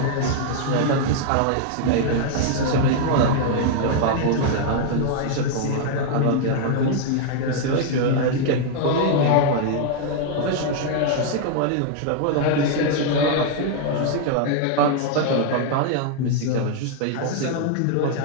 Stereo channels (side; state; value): both; different; correlation 0.00